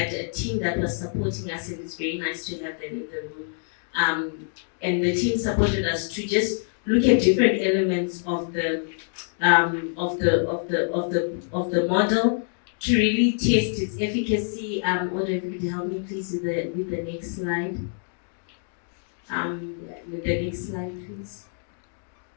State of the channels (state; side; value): silent; right; digital silence